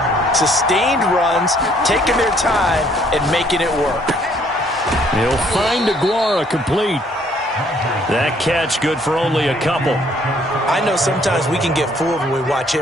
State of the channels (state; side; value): normal; both; correlation 0.63